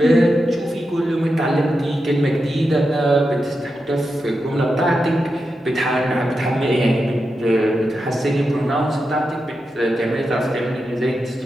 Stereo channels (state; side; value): normal; both; correlation 0.88